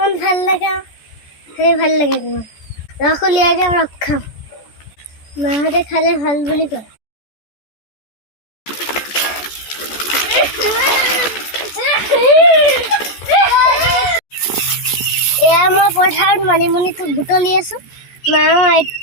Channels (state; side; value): late; right; 14 ms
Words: ভাল লাগে সেই ভাল লাগে ৰস উলিয়াই যাম ৰস খাম মাহঁতে খালে ভাল বুলি কয় এয়া মই পথাৰত মানিমুনিটো বুটলি আছো মা